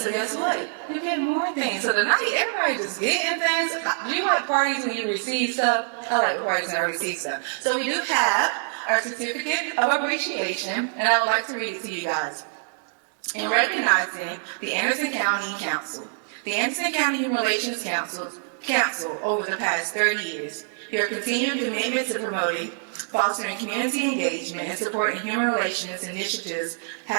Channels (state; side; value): silent; left; digital silence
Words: So guess what? You get more things. So tonight, everybody just getting things. Do you like parties when you receive stuff? I like parties when I receive stuff. So we do have our certificate of appreciation, and I would like to read it to you guys. In recognizing the Anderson County Council, the Anderson County Human Relations Council over the past 30 years, your continued commitment to promoting, fostering community engagement, and supporting human relations initiatives